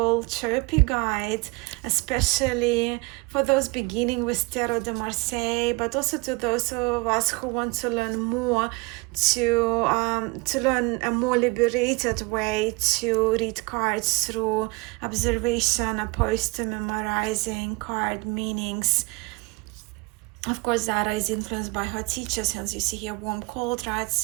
chirpy guide, especially for those beginning with Tarot de Marseille, but also to those of us who want to learn more, to learn a more liberated way to read cards through observation opposed to memorizing card meanings. Of course, Zara is influenced by her teachers, hence you see here warm, cold, right?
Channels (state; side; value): quieter; left; 25.7 dB